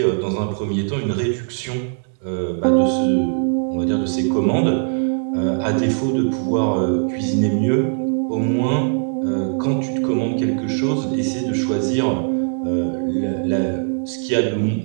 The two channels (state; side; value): silent; left; 63 dB below the other